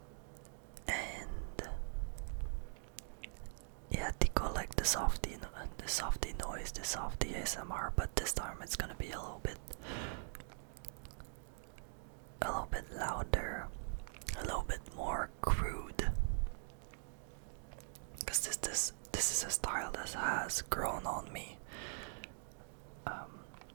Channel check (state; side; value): silent; left; digital silence